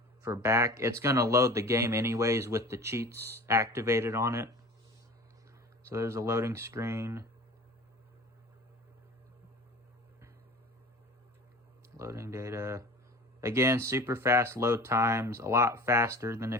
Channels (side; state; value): both; normal; correlation 0.39